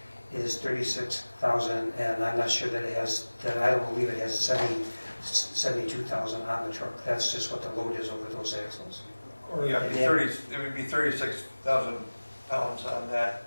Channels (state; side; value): inverted; both; correlation -1.00